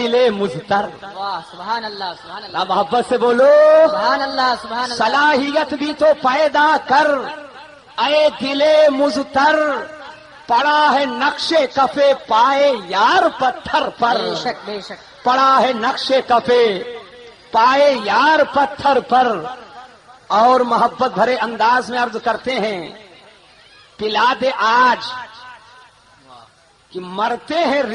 مزتر. واہ سبحان اللہ سبحان اللہ. محبت سے بولو، سبحان اللہ سبحان اللہ. صلاحیت بھی تو پیدا کر اے دل مزتر، پڑا ہے نقش کفے پائے یار پتھر پر. بے شک بے شک. پڑا ہے نقش کفے پائے یار پتھر پر. اور محبت بھرے انداز میں عرض کرتے ہیں، پلا دے آج کہ مرتے ہیں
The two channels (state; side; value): identical; both; correlation 1.00